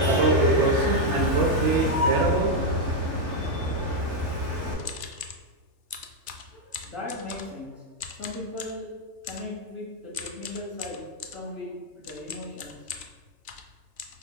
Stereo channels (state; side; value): late; left; 3.3 ms